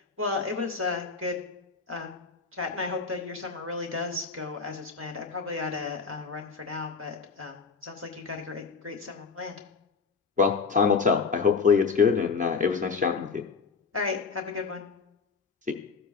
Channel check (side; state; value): right; quieter; 5.1 dB